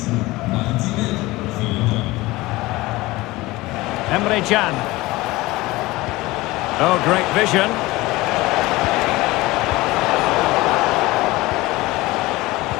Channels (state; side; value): quieter; right; 20.0 dB